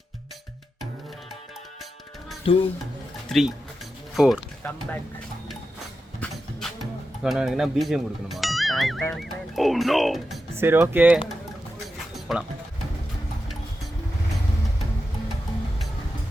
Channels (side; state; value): both; normal; correlation 0.90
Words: 2 3 4 கம் பேக். என்ன பிஜிஎம் கொடுக்கணுமா? Oh no. சரி ஓகே போகலாம்.